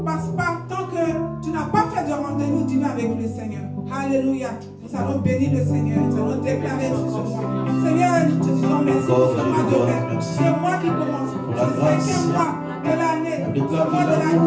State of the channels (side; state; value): both; identical; correlation 1.00